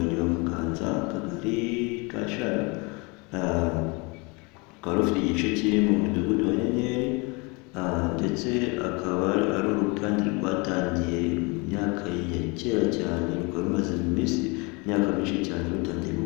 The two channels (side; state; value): right; quieter; 28.8 dB